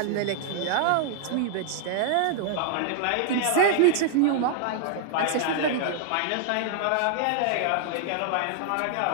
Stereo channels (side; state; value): both; different; correlation -0.01